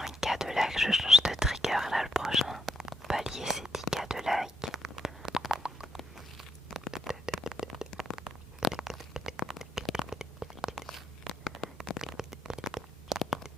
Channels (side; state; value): both; normal; correlation 0.77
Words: de like, je change de trigger là le prochain. Palier c'est 10K de like.